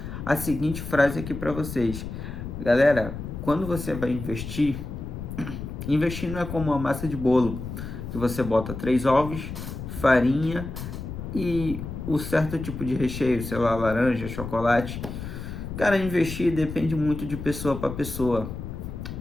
a seguinte frase aqui para vocês. Galera, quando você vai investir não é como uma massa de bolo, que você bota 3 ovos, farinha e o certo tipo de recheio, sei lá, laranja, chocolate. Cara, investir depende muito de pessoa para pessoa.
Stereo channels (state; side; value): noise; left; rumble, 8 dB below the sound